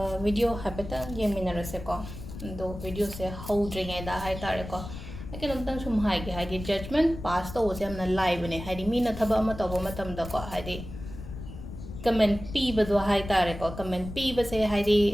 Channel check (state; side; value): noise; left; rumble, 11 dB below the sound